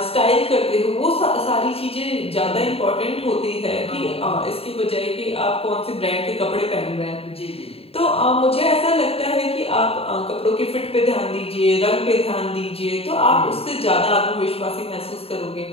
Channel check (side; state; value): right; late; 0.28 ms